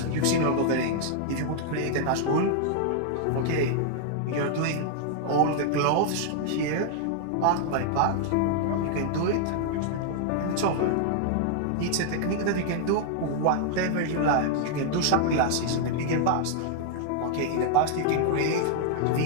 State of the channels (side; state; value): both; different; correlation 0.00